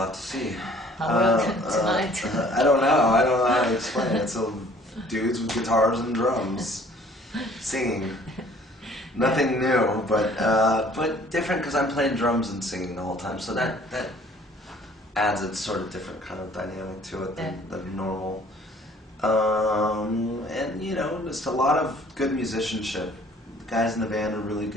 have to see. How will tonight? I don't know. I don't know how to explain it. So dudes with guitars and drums singing. Nothing new, but different because I'm playing drums and singing the whole time. So that adds a sort of different kind of dynamic to it than normal. And you know, just a lot of good musicianship. The guys in the band are really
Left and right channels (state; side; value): normal; both; correlation 0.55